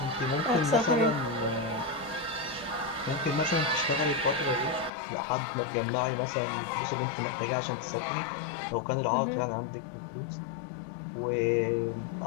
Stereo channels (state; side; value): drops out; right; at 4.9 s